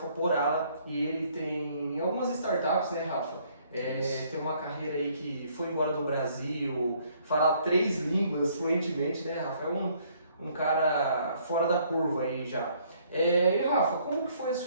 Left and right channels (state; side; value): inverted; both; correlation -0.64